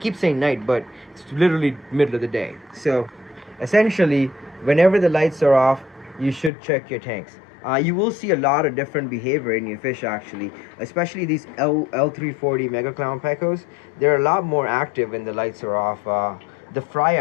saying night, but it's literally middle of the day. So essentially, whenever the lights are off, you should check your tanks. You will see a lot of different behavior in your fish, actually, especially these L340 Mega Clown Pecos. They're a lot more active when the lights are off. The fry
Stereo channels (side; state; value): right; drops out; at 6.5 s